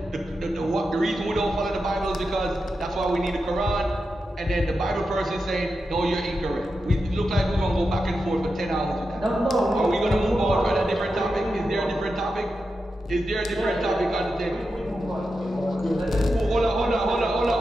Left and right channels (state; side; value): normal; both; correlation 0.89